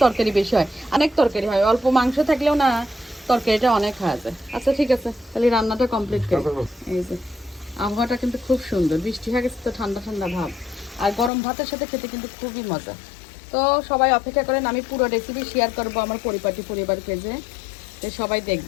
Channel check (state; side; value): drops out; right; at 11.3 s